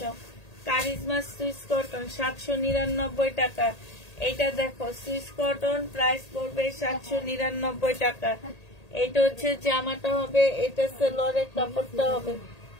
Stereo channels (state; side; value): late; right; 1.8 ms